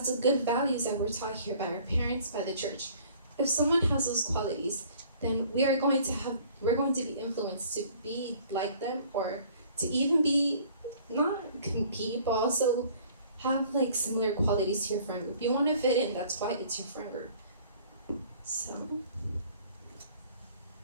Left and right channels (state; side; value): inverted; both; correlation -0.54